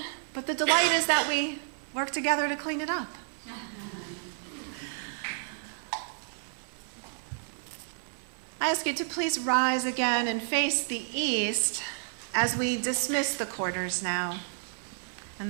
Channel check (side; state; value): left; silent; digital silence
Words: but the delight is that we work together to clean it up. I ask you to please rise again and face the east as we dismiss the quarters now. And